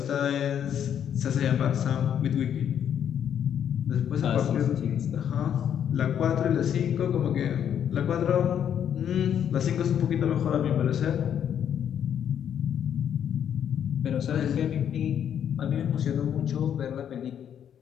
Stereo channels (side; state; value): right; quieter; 9.1 dB